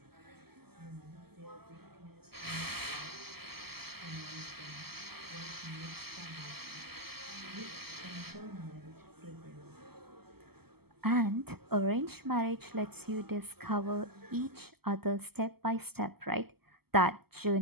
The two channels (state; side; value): late; left; 0.96 ms